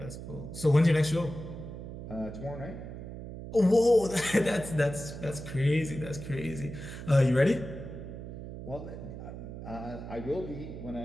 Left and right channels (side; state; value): right; noise; hum, 10 dB below the sound